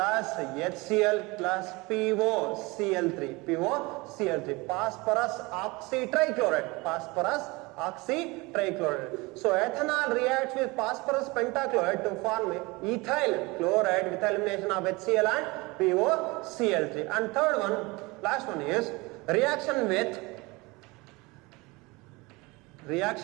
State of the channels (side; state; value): left; quieter; 24.4 dB